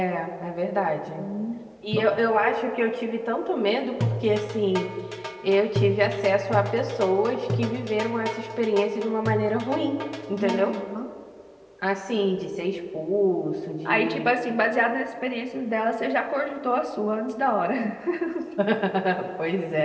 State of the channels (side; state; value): both; identical; correlation 1.00